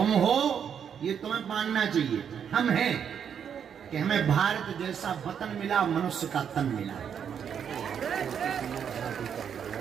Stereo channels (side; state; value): left; quieter; 7.9 dB